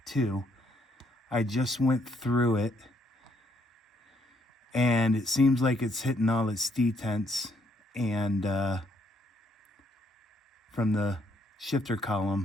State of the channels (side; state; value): both; normal; correlation 0.71